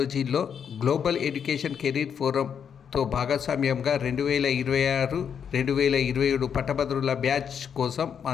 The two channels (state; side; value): quieter; right; 7.6 dB